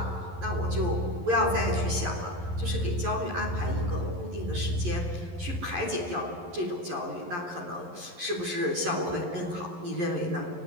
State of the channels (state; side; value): late; left; 11 ms